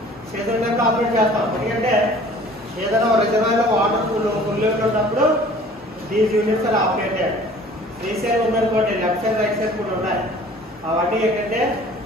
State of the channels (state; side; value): normal; both; correlation 0.49